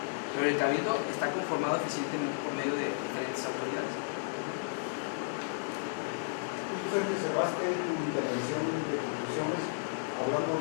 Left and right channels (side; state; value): right; silent; digital silence